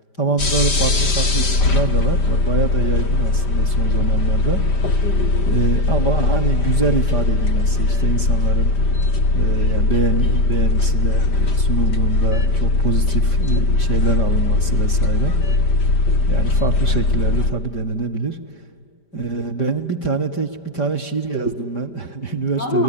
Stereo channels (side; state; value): right; late; 5.1 ms